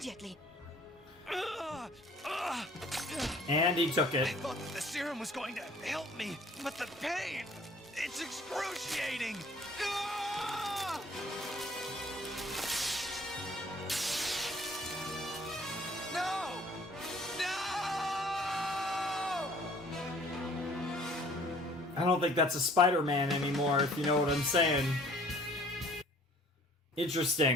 And he took I it. thought that the serum was going to help me, but the pain, it's excruciating. Ah! No! No! I don't think that's a Spider-Man anymore, if you know what I'm saying.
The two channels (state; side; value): normal; both; correlation 0.54